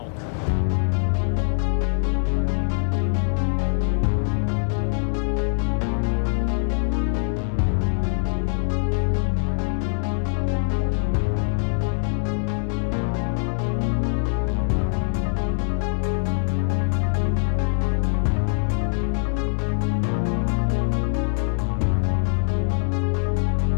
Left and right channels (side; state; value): right; silent; digital silence